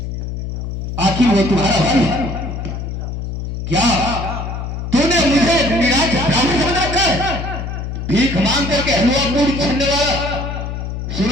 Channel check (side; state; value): left; noise; hum, 5 dB below the sound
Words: आखिर वो तुम्हारा भाई है क्या? तूने मुझे निराश ब्राह्मण बनाकर भीख मांग करके हलवा पूरी करने वाला।